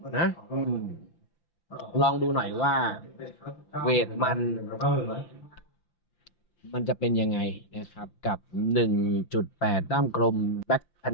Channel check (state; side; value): late; right; 5.8 ms